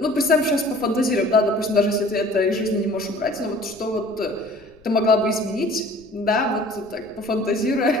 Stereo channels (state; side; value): noise; left; rumble, 28 dB below the sound